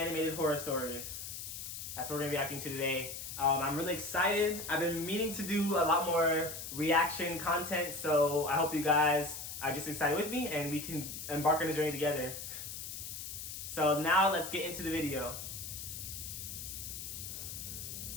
Horror Stories. That's what we're going to be reacting to today. I'm really excited. I've been meaning to do a lot more reaction content, so I hope you guys are just excited with me and we can embark on the journey together. So now let's get into the video.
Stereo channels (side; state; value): left; noise; hiss, 8 dB below the sound